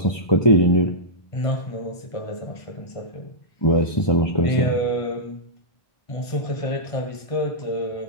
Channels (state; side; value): late; right; 1.5 ms